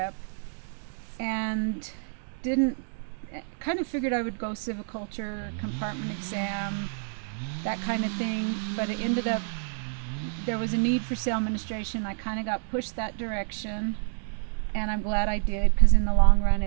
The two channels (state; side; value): silent; left; digital silence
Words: and kind of figured I would go civiculture, compartment exam, that kind of thing, but it ended up there was a need for sale administration. I kind of got pushed that direction, and I'm glad I did, because in the long run